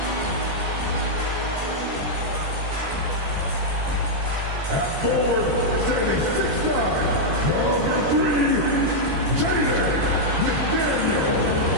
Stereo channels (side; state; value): left; late; 14 ms